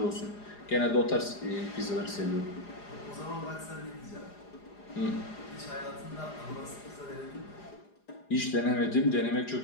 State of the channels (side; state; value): right; late; 4.9 ms